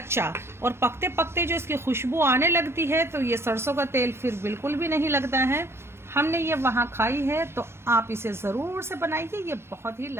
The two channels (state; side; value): late; left; 0.12 ms